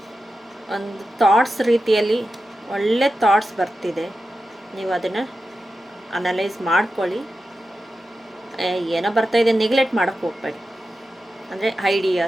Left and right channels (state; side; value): normal; both; correlation 0.91